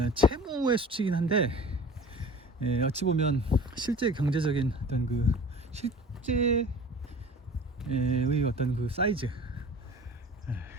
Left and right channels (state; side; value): normal; both; correlation 0.41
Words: 채무의 수치긴 한데 어찌 보면 실제 경제적인 어떤 그 실제의 어떤 그 사이즈,